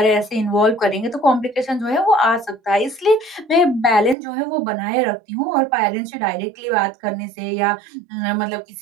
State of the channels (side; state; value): left; drops out; at 4.2 s